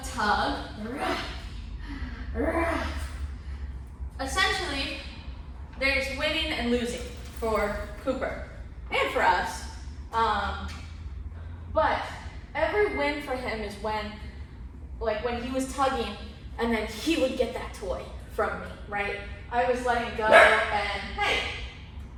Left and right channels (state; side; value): identical; both; correlation 1.00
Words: tug, Essentially, there's winning and losing for Cooper and for us. But every win for him is when he was tugging and then he would get that toy from me, right? I was letting go and, hey,